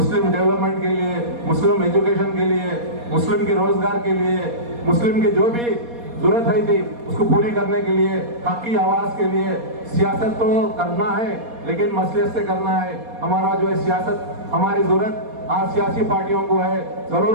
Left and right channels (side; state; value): left; late; 4.2 ms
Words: डेवलपमेंट के लिए, मुस्लिम एजुकेशन के लिए, मुस्लिम के रोजगार के लिए, मुस्लिम की जो भी जरूरत है थी उसको पूरी करने के लिए, हक की आवाज के लिए सियासत तो करना है लेकिन मसलियत से करना है। हमारा जो है सियासत, हमारी जरूरत आज सियासी पार्टियों को है,